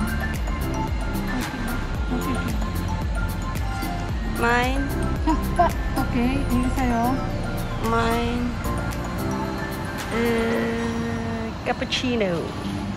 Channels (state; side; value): identical; both; correlation 1.00